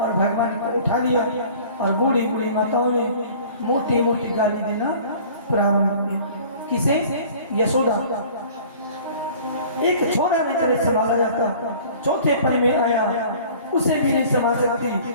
भगवान को उठा लिया और बूढ़ी माताओं ने मोटी गाली देना प्रारंभ की। किसे? यशोदा। एक छोरा नहीं तरह संभाला जाता, चौथे पल में आया उसे भी नहीं संभाल सकती,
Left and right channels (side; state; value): both; inverted; correlation -0.47